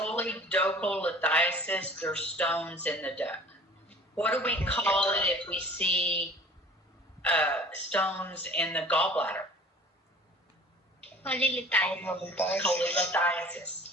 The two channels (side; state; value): both; normal; correlation 0.46